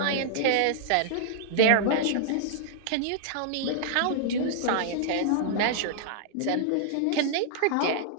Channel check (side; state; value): both; different; correlation -0.01